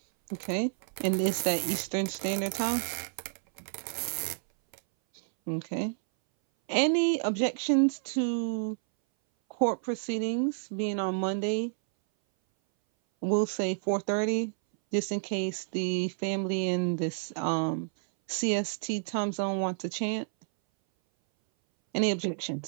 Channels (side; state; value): left; silent; 58 dB below the other